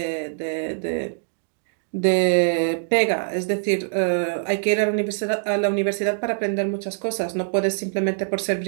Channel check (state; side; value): silent; left; digital silence